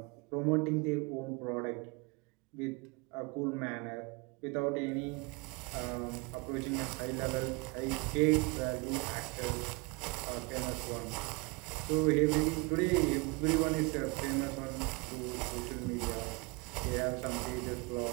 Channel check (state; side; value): quieter; left; 28.5 dB